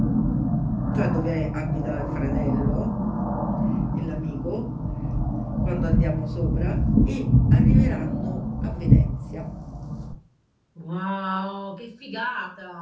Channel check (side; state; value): both; identical; correlation 1.00